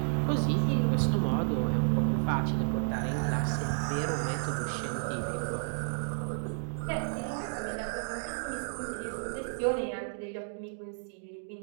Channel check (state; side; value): silent; left; digital silence